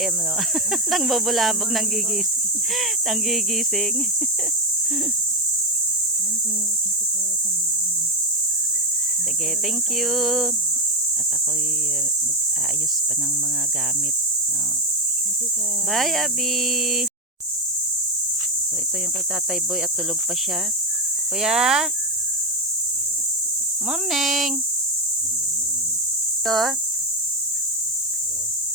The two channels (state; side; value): normal; both; correlation 0.11